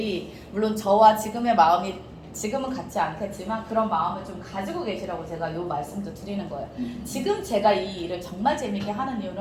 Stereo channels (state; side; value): identical; both; correlation 1.00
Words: 물론 저와 지금의 마음이 지금은 같지 않겠지만 그런 마음을 좀 가지고 계시라고 제가 요 말씀도 드리는 거예요. 지금 제가 이 일을 정말 재밌게 하는